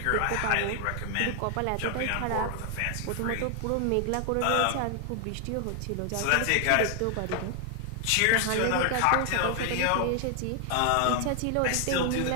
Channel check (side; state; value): both; different; correlation 0.00